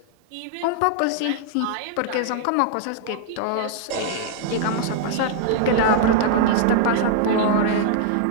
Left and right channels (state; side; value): different; both; correlation -0.01